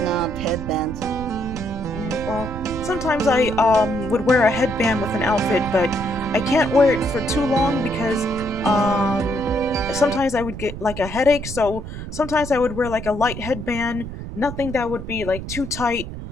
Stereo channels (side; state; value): right; noise; rumble, 9 dB below the sound